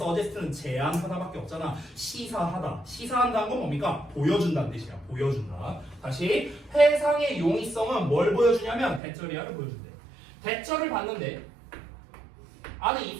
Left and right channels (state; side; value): drops out; left; at 9.0 s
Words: 제안하다밖에 없잖아. 시사하다. 시사한다는 건 뭡니까? 보여준다는 뜻이야. 보여준다. 다시, 해상의 용이성은 뭘 보여주냐면 대절이야를 보여준대. 대절을 봤는데 안에